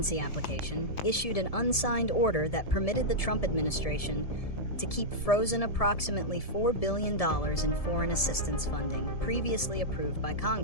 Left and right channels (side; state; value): right; late; 1.7 ms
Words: application, issued an unsigned order that permitted the Trump administration to keep frozen approximately $4 billion in foreign assistance funding previously approved by